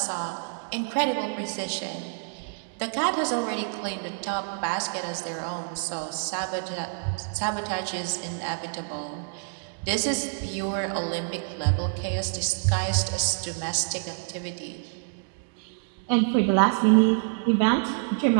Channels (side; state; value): left; silent; 60 dB below the other